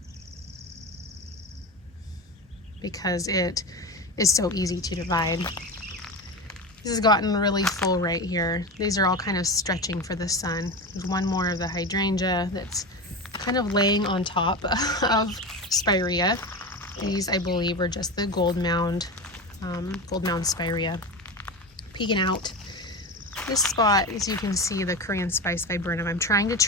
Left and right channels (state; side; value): normal; both; correlation 0.24